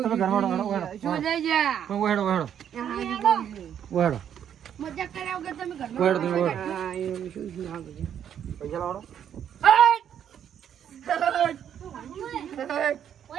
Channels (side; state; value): left; quieter; 9.3 dB